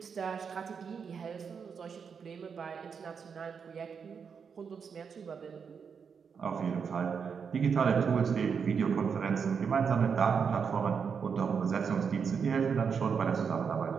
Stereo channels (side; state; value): left; quieter; 6.3 dB